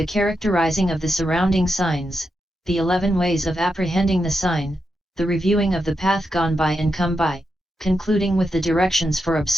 characterizing of the surrounding signs, the 11 ways of apprehending the sign, the reviewing of the path gone by and come by, concluding with the directions for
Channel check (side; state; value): both; normal; correlation 0.86